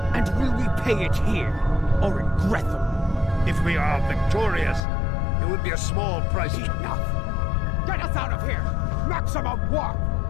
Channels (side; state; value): right; drops out; at 4.8 s